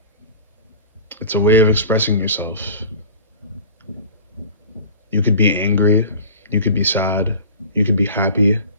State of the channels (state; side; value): inverted; both; correlation -0.38